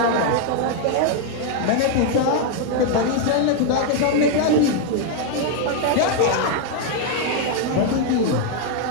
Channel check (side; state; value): both; different; correlation 0.01